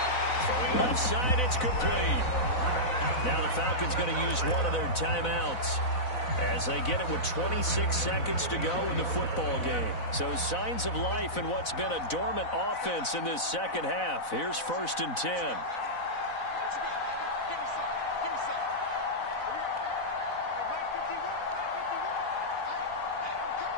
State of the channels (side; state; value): right; late; 4.0 ms